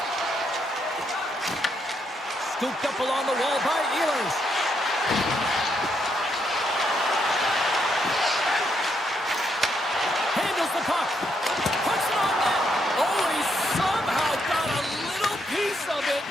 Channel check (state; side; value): normal; both; correlation 0.77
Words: Scooped up along the wall by Ehlers. Handles the puck. Puts it on net. Oh, he somehow got a little piece of it,